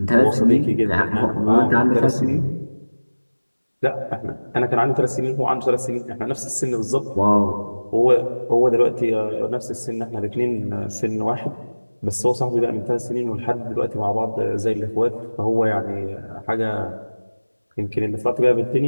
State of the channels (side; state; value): both; inverted; correlation -1.00